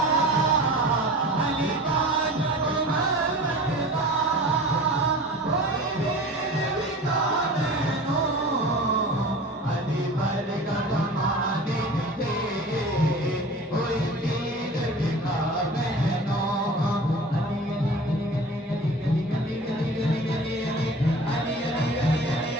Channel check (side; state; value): both; normal; correlation 0.39